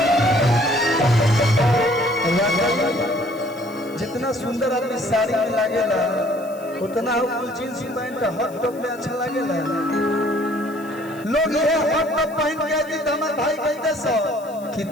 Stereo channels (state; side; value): noise; left; hiss, 23 dB below the sound